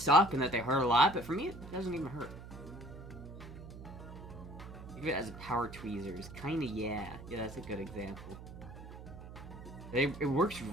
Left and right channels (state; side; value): noise; right; hum, 13 dB below the sound